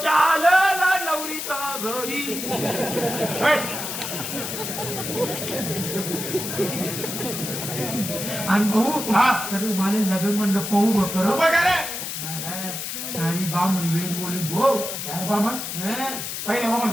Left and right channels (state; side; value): noise; left; hiss, 5 dB below the sound